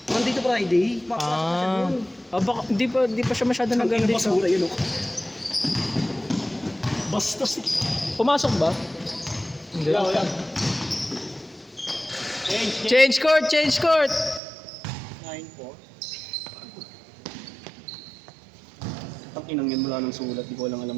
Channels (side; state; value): left; drops out; at 14.4 s